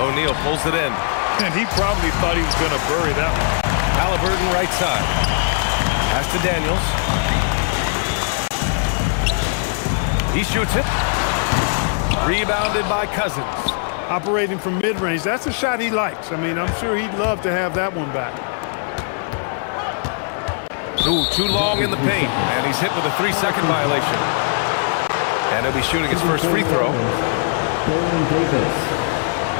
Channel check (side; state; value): right; silent; 61 dB below the other